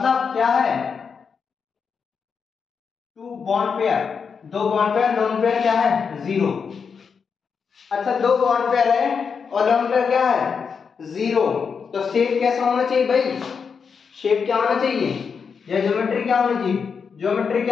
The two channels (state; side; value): quieter; right; 6.0 dB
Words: क्या है? 2 bond pair, 2 bond pair, lone pair क्या है? 0। अच्छा, 2 बॉन्ड पेयर है और लोन पेयर क्या है? 0। तो शेप कैसा होना चाहिए भाई? शेप क्या होना चाहिए? या ज्योमेट्री क्या होनी चाहिए? ज्योमेट्री